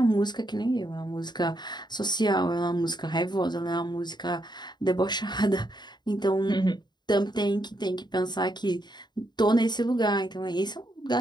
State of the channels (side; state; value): right; late; 0.21 ms